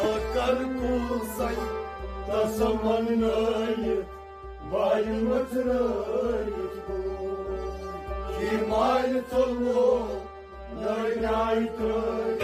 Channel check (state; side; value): identical; both; correlation 1.00